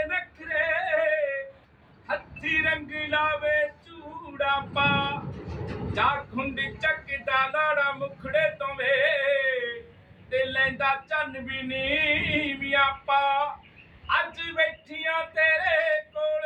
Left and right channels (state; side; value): identical; both; correlation 1.00